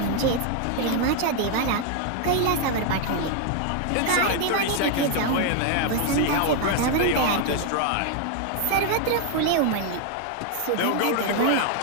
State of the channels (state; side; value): different; both; correlation 0.00